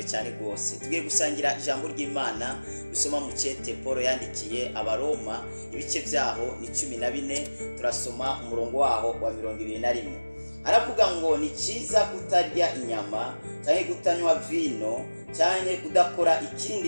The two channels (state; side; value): inverted; both; correlation -1.00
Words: cyane rwose. Tugiye gusangira ijambo ry'Imana dusoma mu cete Paul yandikiye abaroma ibice byaho ni 14 turasoma umurongo waho wa 21. Aravuga ngo ni cyiza kutarya inyama cyangwa kutanywa vino cyangwa kudakora